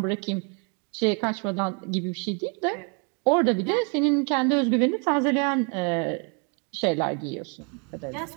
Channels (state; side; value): quieter; left; 35.7 dB